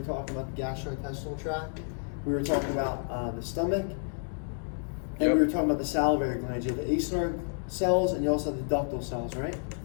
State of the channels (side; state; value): right; silent; 58 dB below the other